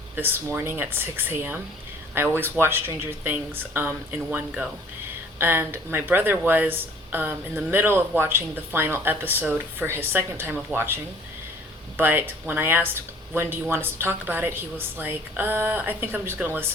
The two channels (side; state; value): both; normal; correlation 0.53